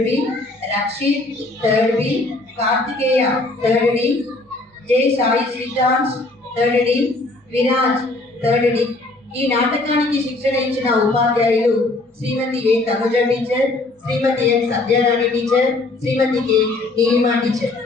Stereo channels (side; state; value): right; quieter; 3.0 dB